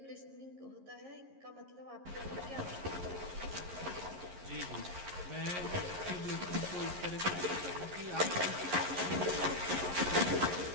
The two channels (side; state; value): left; late; 11 ms